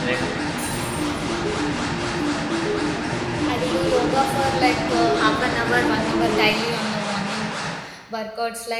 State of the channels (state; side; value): identical; both; correlation 1.00